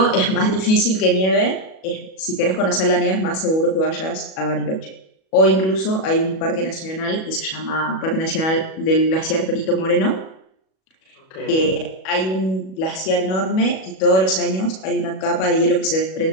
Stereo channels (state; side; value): late; right; 37 ms